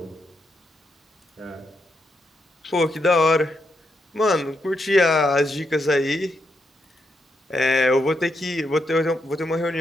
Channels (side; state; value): both; normal; correlation 0.81